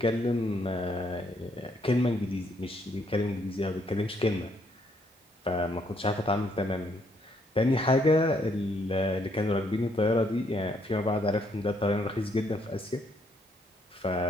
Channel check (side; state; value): both; normal; correlation 0.71